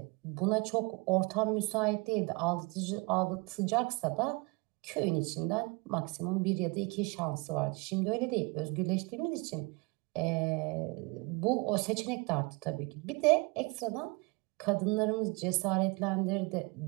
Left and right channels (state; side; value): quieter; left; 27.6 dB